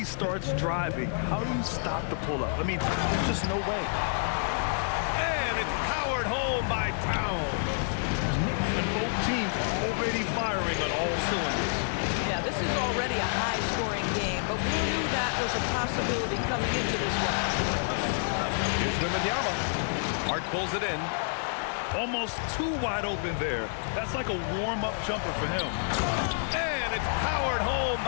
starts driving, how do you stop the pull-up? I mean, there's just no way. And it's powered home by Towns. And both teams already firing on all cylinders. Yeah, this is already a high-scoring game, but we knew that was a possibility. possibility coming into this one. Here's Wembanyama. Hart pulls it in. Almost too wide open there. That's like a warm-up jumper for him. And it's powered home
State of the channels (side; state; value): right; silent; digital silence